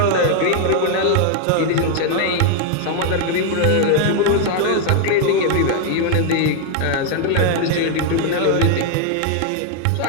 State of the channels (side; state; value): both; different; correlation 0.00